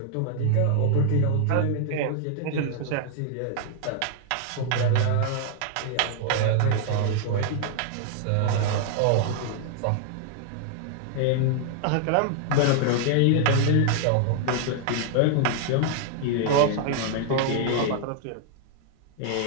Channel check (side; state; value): both; different; correlation 0.00